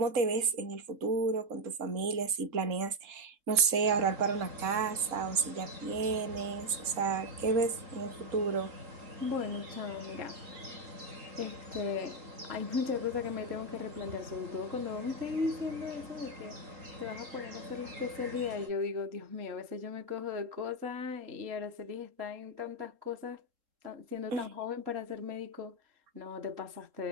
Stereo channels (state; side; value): late; left; 3.7 ms